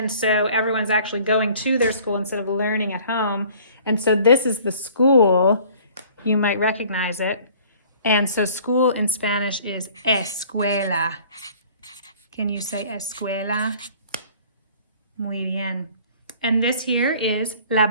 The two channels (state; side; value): inverted; both; correlation -0.52